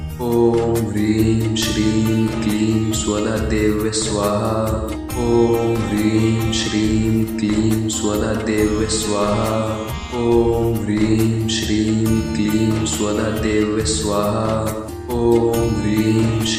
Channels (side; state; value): both; identical; correlation 1.00